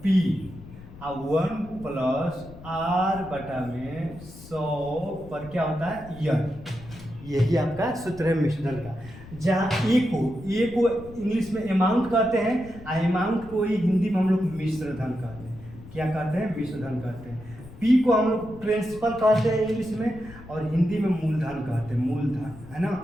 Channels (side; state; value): left; noise; rumble, 17 dB below the sound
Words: पी 1 प्लस आर बटा में 100 पर क्या होता है ईयर। यही आपका सूत्र है मिश्र धन का। जहाँ ए को इंग्लिश में अमाउंट कहते हैं, अमाउंट को ही हिंदी में हम लोग मिश्र धन कहते हैं। क्या कहते हैं? मिश्र धन कहते हैं। पी को हम लोग प्रिंसिपल कहते हैं इंग्लिश में, और हिंदी में मूलधन कहते हैं, मूलधन, है ना।